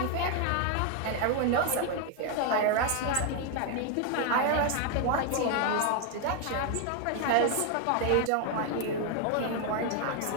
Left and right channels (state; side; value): different; both; correlation 0.01